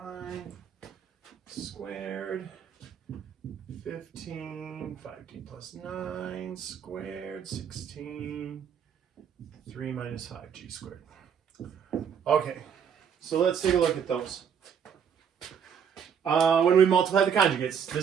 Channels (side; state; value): left; quieter; 7.6 dB